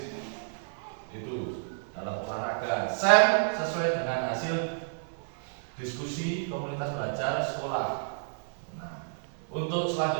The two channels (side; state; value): left; silent; 57 dB below the other